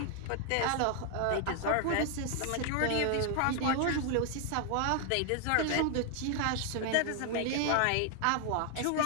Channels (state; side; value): different; both; correlation 0.00